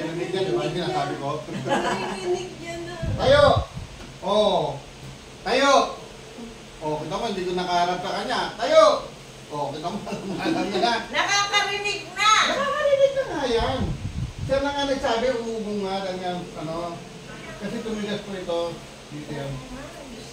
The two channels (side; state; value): both; identical; correlation 1.00